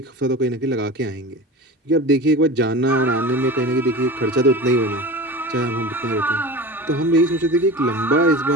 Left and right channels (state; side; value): normal; both; correlation 0.32